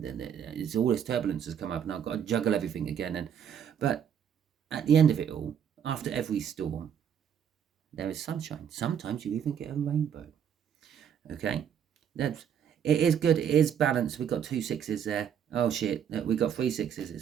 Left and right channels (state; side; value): quieter; left; 8.5 dB